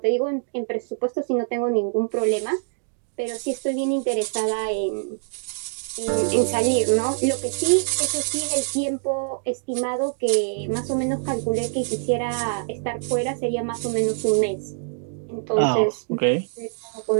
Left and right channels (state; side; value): silent; left; digital silence